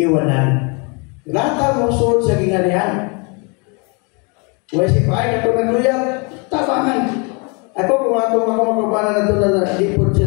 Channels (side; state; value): right; quieter; 32.8 dB